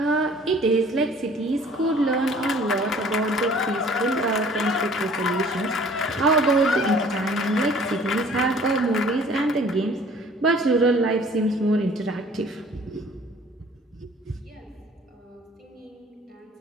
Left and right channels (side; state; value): both; normal; correlation 0.52